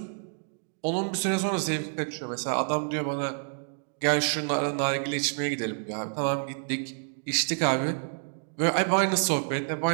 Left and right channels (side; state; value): left; silent; 59 dB below the other